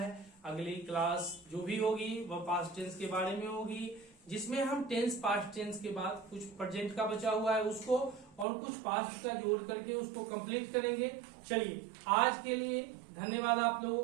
अगली क्लास जो भी होगी वह पास्ट टेंस के बारे में होगी, जिसमें हम टेंस पास्ट टेंस के बाद कुछ प्रेजेंट का बचा हुआ है उसको और कुछ पास्ट का जोड़ करके उसको कंप्लीट करेंगे। चलिए आज के लिए धन्यवाद आप लोगों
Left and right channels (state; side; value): drops out; left; at 8.5 s